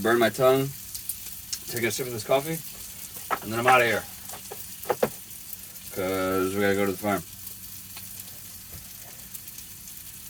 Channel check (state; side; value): identical; both; correlation 1.00